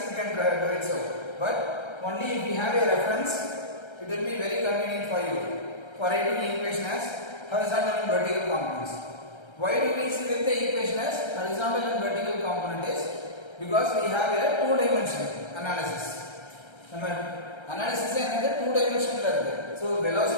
you can do it so. But only if you have a reference, it will be very convenient for you for writing the equation as horizontal and vertical components. Why do we split the equation as horizontal and vertical component is because we have a two-dimension analysis. Analysis is another two-dimension. So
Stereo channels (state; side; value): late; right; 1.3 ms